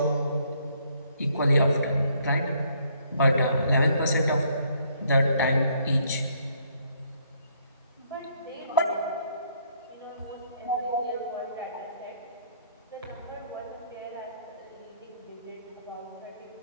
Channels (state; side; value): inverted; both; correlation -0.68